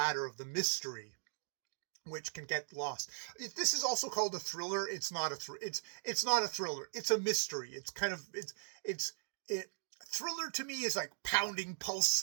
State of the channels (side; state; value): left; silent; digital silence